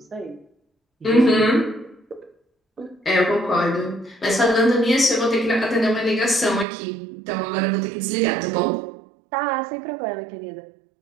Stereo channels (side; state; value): left; drops out; at 6.7 s